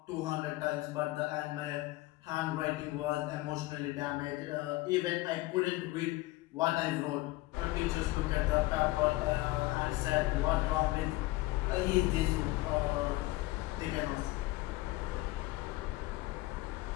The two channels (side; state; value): right; quieter; 19.1 dB